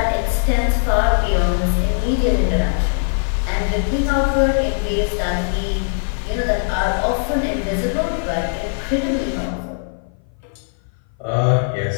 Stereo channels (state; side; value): silent; right; 57 dB below the other